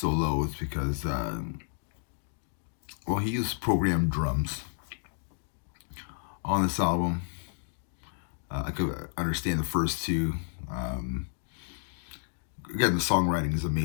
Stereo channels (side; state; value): right; silent; digital silence